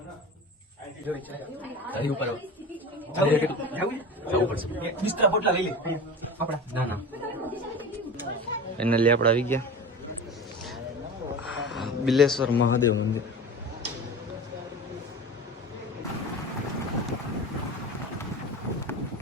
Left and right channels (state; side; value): normal; both; correlation 0.32